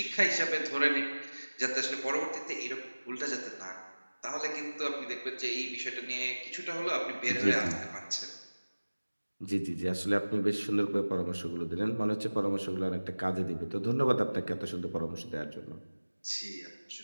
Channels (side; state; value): both; inverted; correlation -1.00